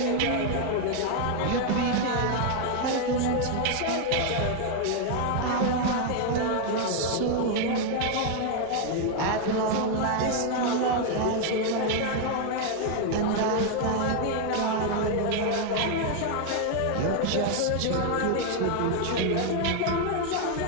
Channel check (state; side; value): different; both; correlation 0.00